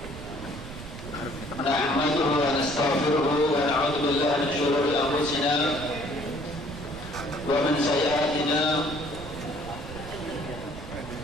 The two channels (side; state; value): right; noise; rumble, 12 dB below the sound